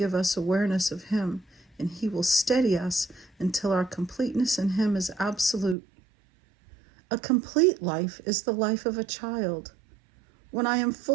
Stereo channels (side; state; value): left; drops out; at 5.8 s